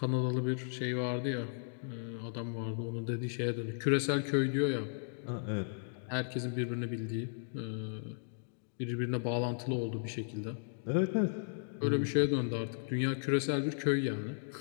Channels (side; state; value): right; silent; digital silence